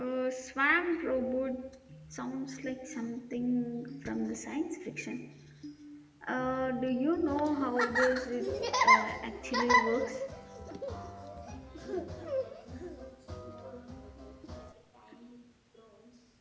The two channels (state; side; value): identical; both; correlation 1.00